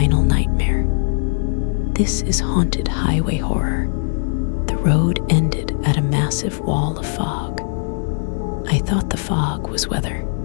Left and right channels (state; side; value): silent; right; digital silence